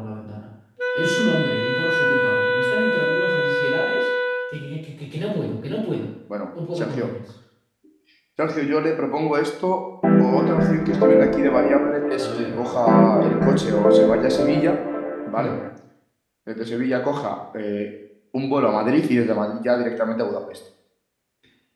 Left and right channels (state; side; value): identical; both; correlation 1.00